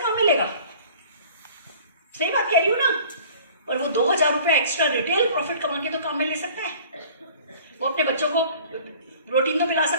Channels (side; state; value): both; inverted; correlation -0.48